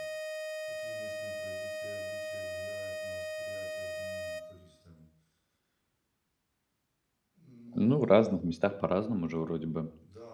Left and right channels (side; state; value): both; identical; correlation 1.00